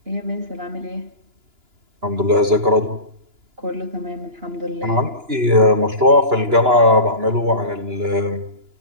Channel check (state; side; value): late; left; 2.9 ms